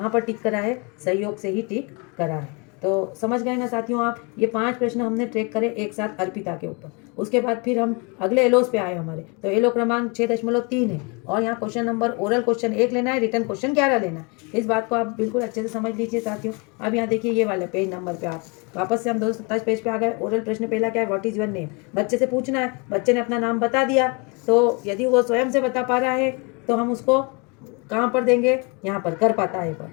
पर टिक करा है, सहयोग से ही टिक करा है। तो समझ गए ना साथियों आप, ये 5 प्रश्न हमने ट्रैक करे एक साथ अर्पिता के ऊपर। उसके बाद फिर हम अगले LOs पे आए हमारे, तो LO क्रमांक 6.3 है, और यहाँ क्वेश्चन नंबर ओरल क्वेश्चन 1 लेना है, रिटर्न क्वेश्चन 11 लेना है। इस बात को आप बिल्कुल अच्छे से समझ लीजिए साथियों। अब यहाँ देखिए ये वाले पेज नंबर पे आप वापस से हम 227 पेज पे आ गए। ओरल प्रश्न पहला क्या है, व्हाट इज योर नेम, बच्चे से पूछना है। बच्चे ने अपना नाम बता दिया, तो यदि वो स्वयं से बता पा रहा है तो हम उसको कहाँ पर देंगे, यहाँ पर कर पाता है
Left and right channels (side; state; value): right; quieter; 31.3 dB